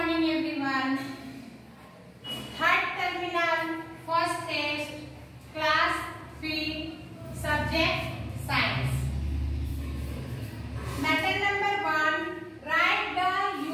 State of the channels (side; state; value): both; identical; correlation 1.00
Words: morning everyone. Third terminal, first test, class 3, subject science. Matter number 1, write the